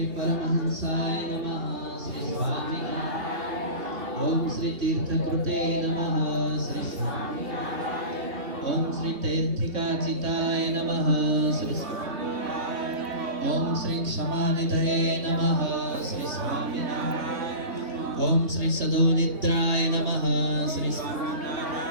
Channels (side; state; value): left; late; 3.0 ms